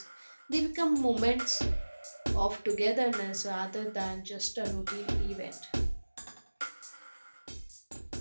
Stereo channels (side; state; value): both; inverted; correlation -1.00